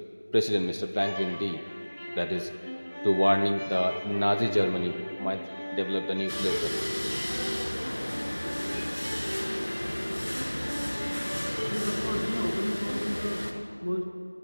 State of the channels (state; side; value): inverted; both; correlation -1.00